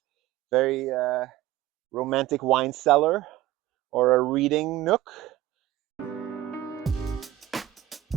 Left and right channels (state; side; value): quieter; left; 14.5 dB